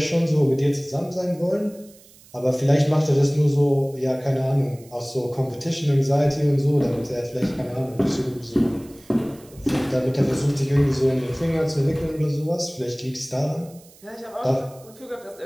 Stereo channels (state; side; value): noise; right; hiss, 25 dB below the sound